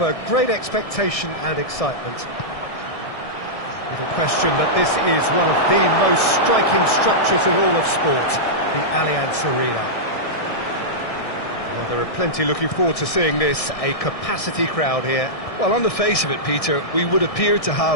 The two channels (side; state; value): right; late; 1.6 ms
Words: great expectation and excitement. Little question that this is one of the most striking structures in all of sport, the Allianz Arena. Well, there are plenty looking forward to seeing this, a capacity crowd here. Well, on the face of it, Peter, we would appear to